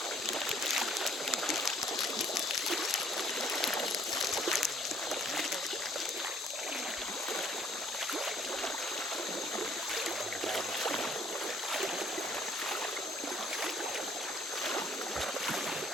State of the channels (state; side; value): normal; both; correlation 0.62